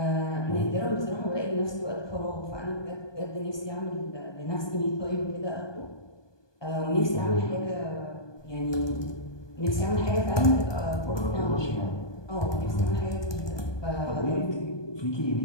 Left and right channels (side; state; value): right; late; 1.2 ms